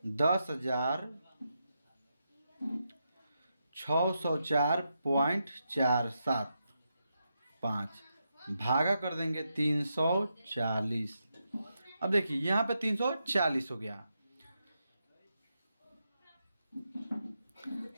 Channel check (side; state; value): both; inverted; correlation -0.85